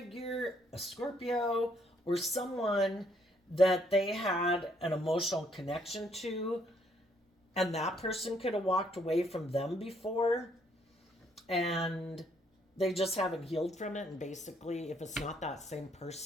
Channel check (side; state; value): both; normal; correlation 0.69